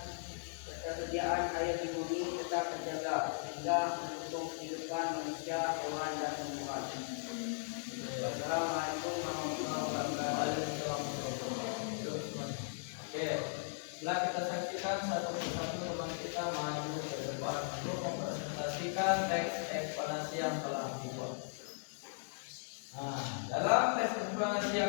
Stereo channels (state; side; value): silent; right; digital silence